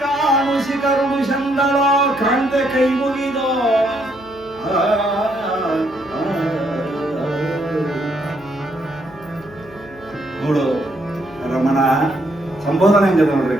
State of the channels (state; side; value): noise; right; hum, 24 dB below the sound